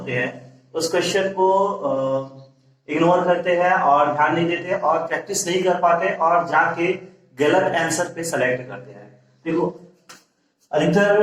हैं उस क्वेश्चन को इग्नोर करते हैं और ध्यान नहीं देते और प्रैक्टिस नहीं कर पाते और जाके गलत आंसर पे सेलेक्ट करते हैं। देखो,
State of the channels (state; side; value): identical; both; correlation 1.00